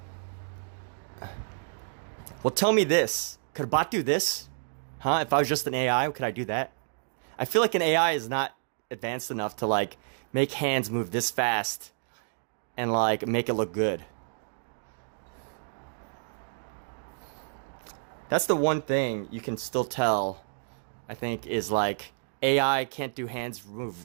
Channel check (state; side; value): silent; left; digital silence